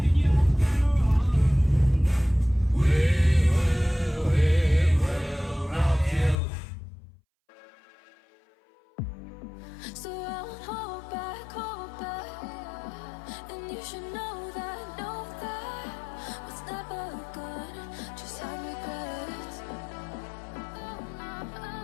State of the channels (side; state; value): right; drops out; at 6.4 s